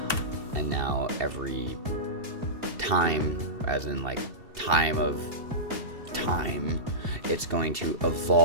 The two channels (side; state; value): left; late; 2.7 ms